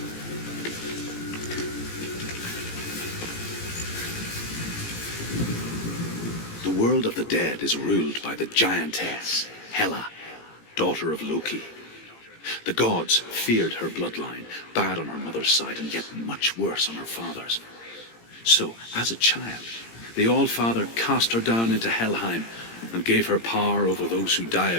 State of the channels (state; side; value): late; right; 17 ms